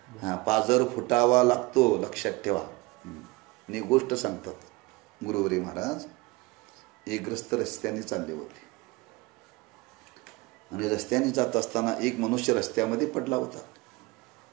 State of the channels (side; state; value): left; quieter; 23.4 dB